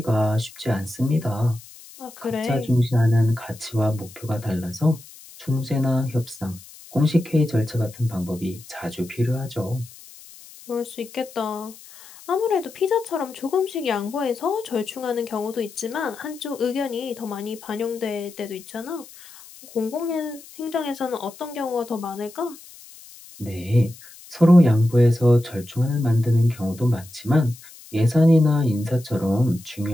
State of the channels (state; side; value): noise; left; hiss, 20 dB below the sound